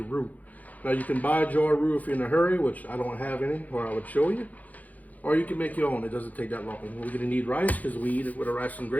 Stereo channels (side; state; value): right; late; 0.078 ms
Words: roux. Now, you can buy a jar of roux if you're in a hurry, which I don't have any, or I would show you. Or you can make your own. It doesn't take that long. We're going to need rice because we eat it with a rice and